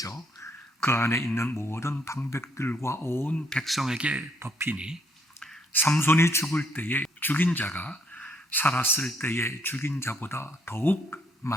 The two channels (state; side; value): normal; both; correlation 0.70